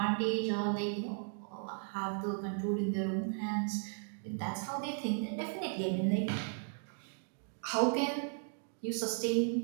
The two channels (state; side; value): silent; left; 54 dB below the other